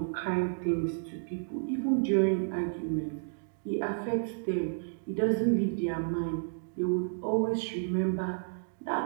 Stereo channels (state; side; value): silent; left; digital silence